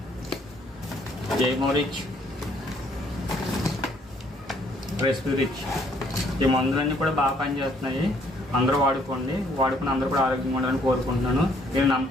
జైమోరిచ్, రెస్పిరిచ్, ఈ మందులన్నీ కూడా బాగా పనిచేస్తున్నాయి. అందరూ వాడుకుని అందరూ కూడా ఆరోగ్యంగా ఉండాలని కోరుకుంటున్నాను. నేను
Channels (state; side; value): normal; both; correlation 0.65